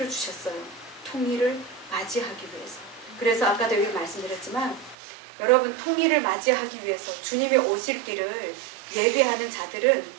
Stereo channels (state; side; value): drops out; left; at 5.0 s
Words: 주셨어요. 통일을 맞이하기 위해서. 그래서 아까도 여기 말씀드렸지만 여러분 통일을 맞이하기 위해서 주님이 오실 길을 예비하는